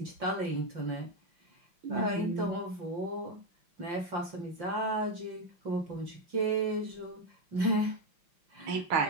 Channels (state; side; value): late; left; 5.7 ms